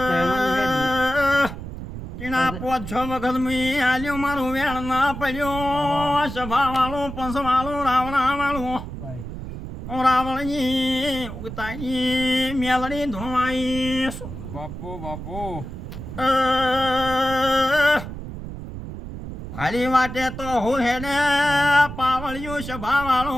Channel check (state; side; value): noise; right; rumble, 9 dB below the sound